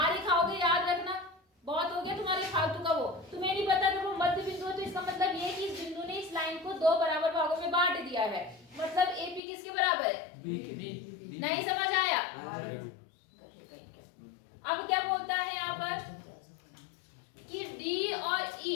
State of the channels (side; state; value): right; drops out; at 9.4 s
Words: ही खाओगे, याद रखना। बहुत हो गया तुम्हारे फालतू का वो। तुम्हें नहीं पता कि वो मध्य बिंदु है तो इसका मतलब ये कि इस बिंदु ने इस लाइन को दो बराबर भागों में बांट दिया है। मतलब AP किसके बराबर है? B। नहीं समझ आया? अब क्या बोलता है यहाँ पर कि D और